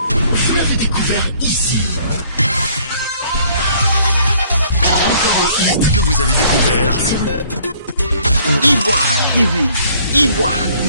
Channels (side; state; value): both; inverted; correlation -0.59